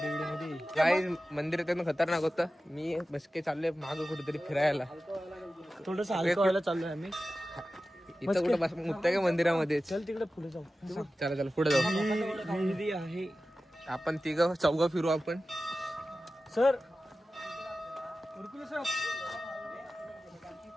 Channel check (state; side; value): normal; both; correlation 0.94